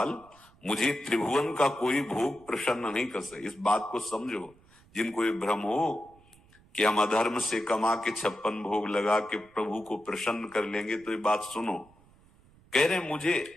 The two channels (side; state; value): right; noise; rumble, 28 dB below the sound